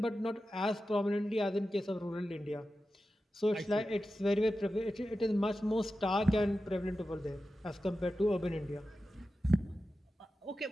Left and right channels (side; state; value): both; normal; correlation 0.93